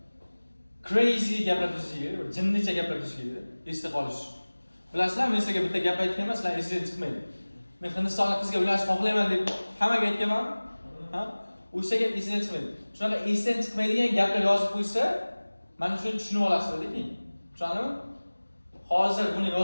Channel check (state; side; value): inverted; both; correlation -1.00